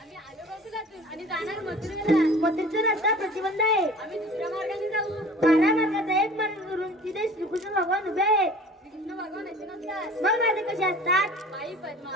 आलो गोकुळातून आणि जाणार मथुरेला. मथुरेचा रस्ता प्रतिबंध आहे. आम्ही दुसऱ्या मार्गाने जाऊ. 12 मार्गाचा एक मार्ग करून तिथे श्रीकृष्ण भगवान उभे आहेत. कृष्ण भगवान असे नसतात. मग राधे कसे असतात? आई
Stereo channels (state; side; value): normal; both; correlation 0.44